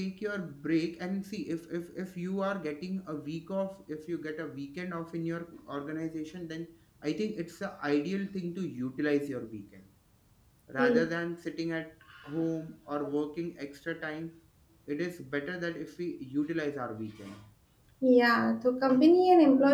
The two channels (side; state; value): both; identical; correlation 1.00